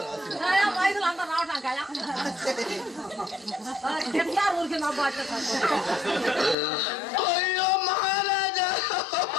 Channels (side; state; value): right; drops out; at 6.6 s